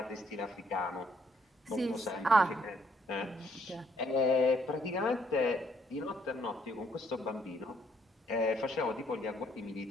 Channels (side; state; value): both; normal; correlation 0.68